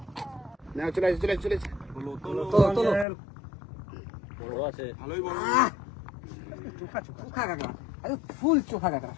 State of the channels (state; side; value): drops out; right; at 3.1 s